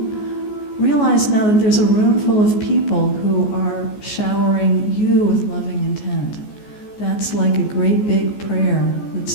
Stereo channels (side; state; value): right; late; 14 ms